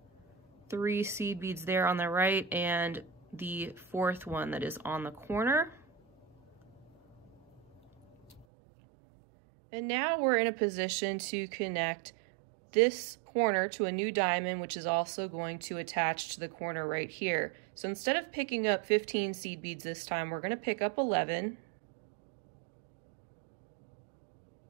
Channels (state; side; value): drops out; left; at 8.5 s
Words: 3 seed beads there on the right and the 4th one that is on the corner. And now we're in a position to connect this corner to a new diamond, which is also going to attach to the corner right here. So instead of picking up 15 seed beads this time, we're going to pick up 11.